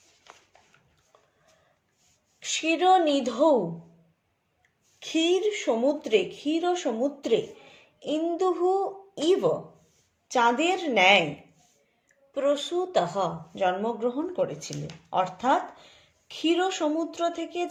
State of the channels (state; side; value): identical; both; correlation 1.00